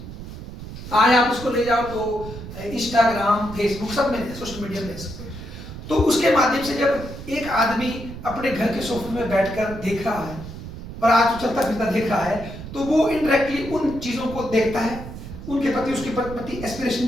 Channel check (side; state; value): right; noise; rumble, 11 dB below the sound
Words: आज आप उसको ले जाओ तो इंस्टाग्राम, फेसबुक सब में सोशल मीडिया में सकते। तो उसके माध्यम से जब एक आदमी अपने घर के सोफे में बैठकर देख रहा है और आज तो चलता फिरता देख रहा है, तो वो इनडायरेक्टली उन चीजों को देखता है, उनके प्रति उसके प्रति एस्पिरेशन